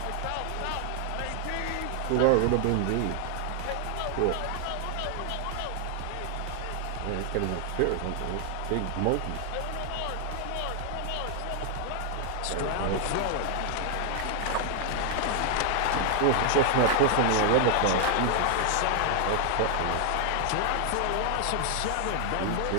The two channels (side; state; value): both; different; correlation 0.00